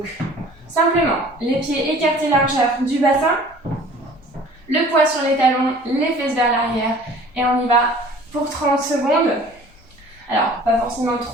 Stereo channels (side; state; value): both; normal; correlation 0.48